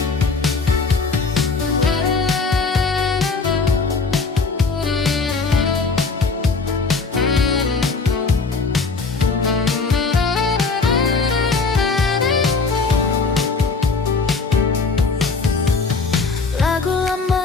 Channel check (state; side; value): quieter; right; 4.3 dB